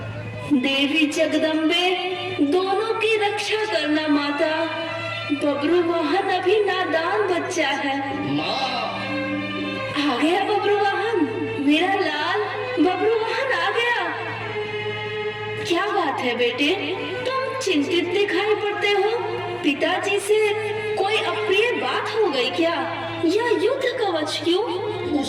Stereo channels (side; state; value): both; identical; correlation 1.00